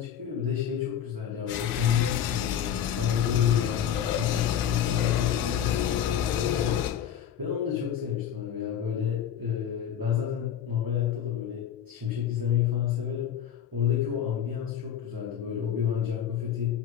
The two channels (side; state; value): right; quieter; 9.4 dB